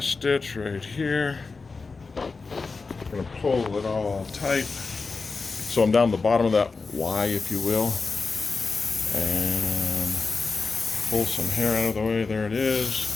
stitch right here. I'm going to pull it all tight. So I'm down the bottom of that Y, if you will. And pull some hair out of the way. There it is.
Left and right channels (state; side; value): quieter; right; 4.3 dB